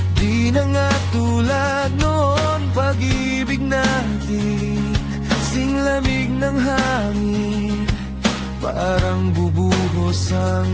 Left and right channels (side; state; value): both; identical; correlation 1.00